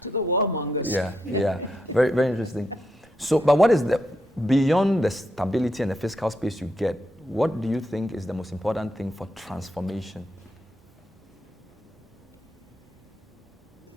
to the warmongers. Yeah. Very, very interesting. So, but what is beyond the stability and the fiscal space you get, what do you think is the most important thing for transformation?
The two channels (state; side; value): normal; both; correlation 0.81